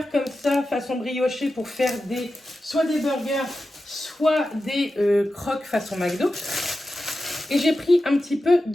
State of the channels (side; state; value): both; normal; correlation 0.92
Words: comme ça, façon briochée, pour faire soit des burgers, soit des croques façon McDo. Et j'ai pris un petit peu